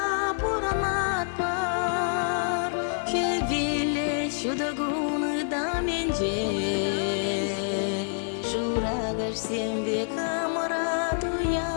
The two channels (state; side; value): silent; right; digital silence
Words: пурамат бар Хевиле чудагуны да менже Шурагар сембе камарат